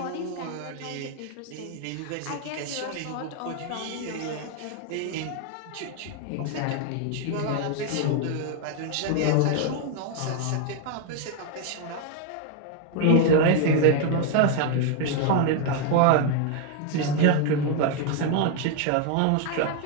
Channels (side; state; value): both; different; correlation 0.01